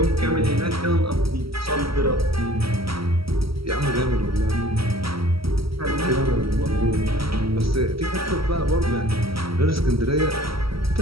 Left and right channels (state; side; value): late; left; 0.75 ms